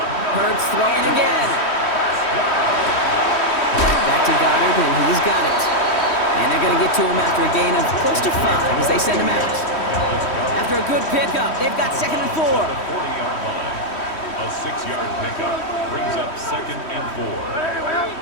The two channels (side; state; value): right; late; 3.1 ms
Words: Hurts throwing again. Back to Goddard, and he's got it. And they're going to get to him after a gain of close to 5 as they send him out. After a good pickup, they've got 2nd and 4. 40-yard line. A 6-yard pickup brings up 2nd and